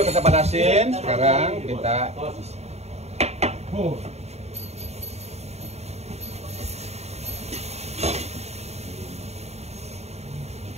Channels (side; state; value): left; late; 0.31 ms